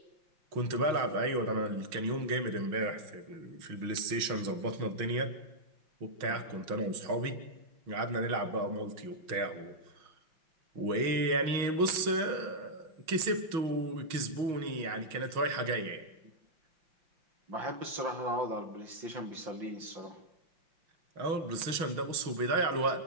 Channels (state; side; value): late; left; 6.3 ms